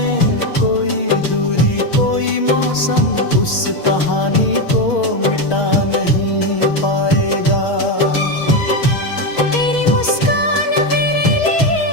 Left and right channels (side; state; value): right; late; 6.3 ms